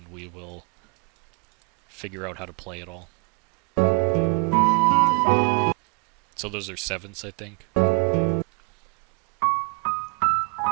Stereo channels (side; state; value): left; quieter; 31.7 dB